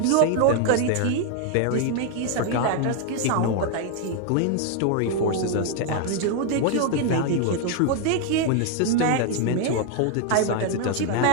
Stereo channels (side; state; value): both; different; correlation 0.01